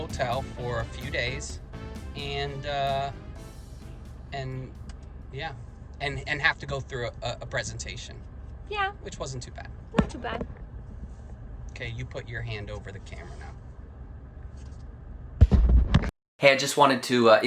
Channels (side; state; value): both; identical; correlation 1.00